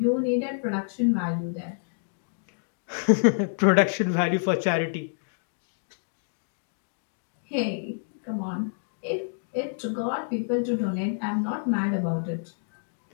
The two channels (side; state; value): right; silent; digital silence